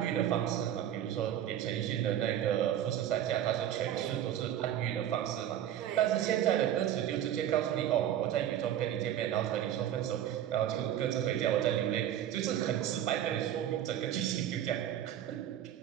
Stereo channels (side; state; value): left; quieter; 11.1 dB